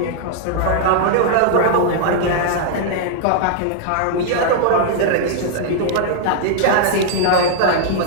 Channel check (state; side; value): different; both; correlation -0.01